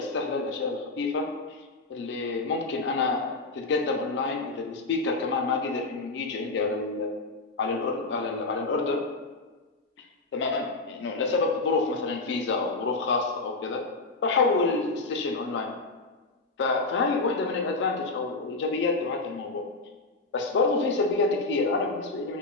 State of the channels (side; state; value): right; quieter; 3.4 dB